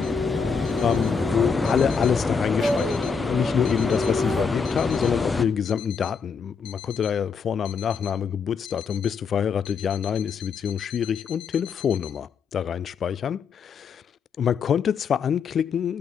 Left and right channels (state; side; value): quieter; right; 5.8 dB